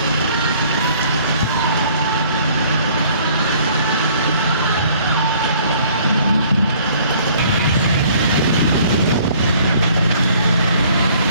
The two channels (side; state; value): both; inverted; correlation -0.57